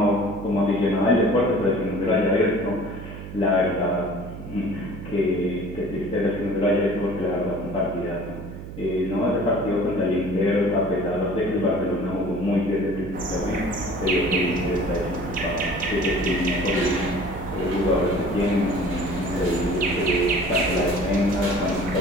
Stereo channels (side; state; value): right; noise; hum, 11 dB below the sound